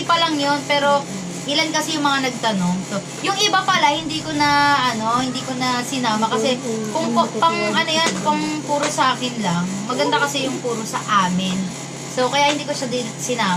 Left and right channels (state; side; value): identical; both; correlation 1.00